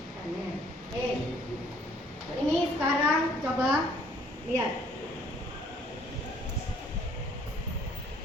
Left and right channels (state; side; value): normal; both; correlation 0.60